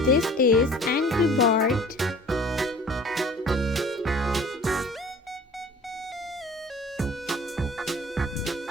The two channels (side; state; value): both; normal; correlation 0.46